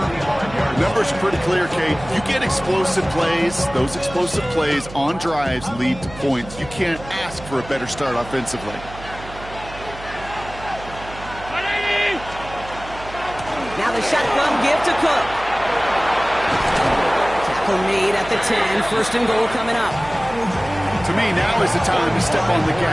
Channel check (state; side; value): noise; right; hum, 15 dB below the sound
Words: numbers are pretty clear, Kate. You get explosive plays. Those explosive plays on drives lead to points. You can't ask for a better start offensively. Now the shotgun give to Cook. Tackle made at the 10. 1st and goal coming up. To me, now is the time to step on the